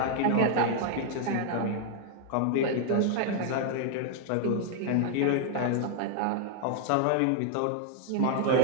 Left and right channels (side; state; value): both; different; correlation 0.00